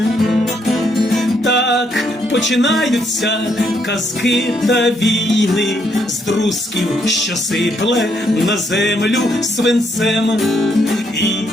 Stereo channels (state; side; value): normal; both; correlation 0.74